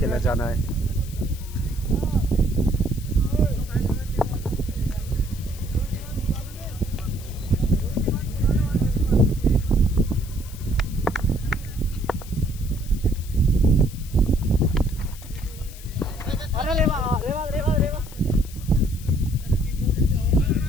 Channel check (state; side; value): noise; left; hiss, 18 dB below the sound